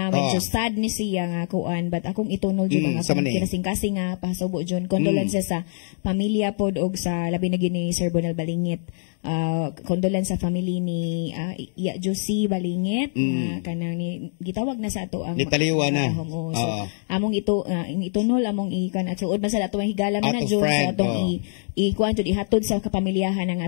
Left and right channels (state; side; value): silent; right; digital silence